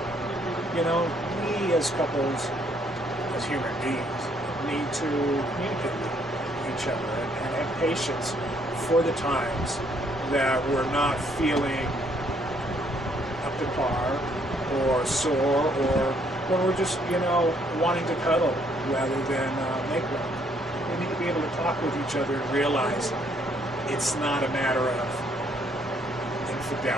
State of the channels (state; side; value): normal; both; correlation 0.68